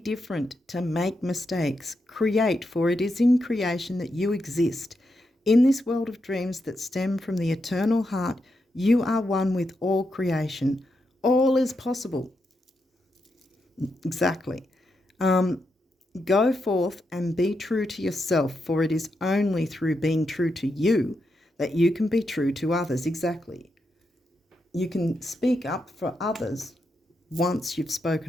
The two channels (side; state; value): both; normal; correlation 0.84